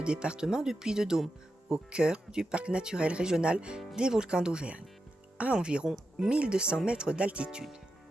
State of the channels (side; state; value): both; normal; correlation 0.88